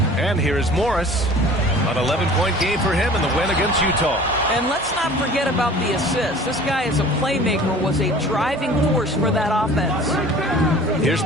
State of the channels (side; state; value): both; normal; correlation 0.45